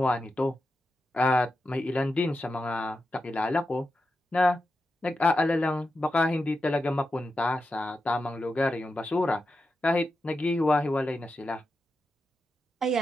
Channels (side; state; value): both; normal; correlation 0.89